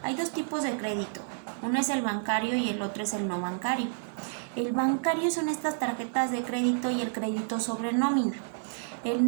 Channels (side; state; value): left; silent; 58 dB below the other